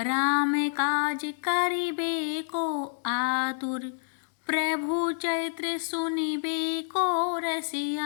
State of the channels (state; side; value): silent; right; digital silence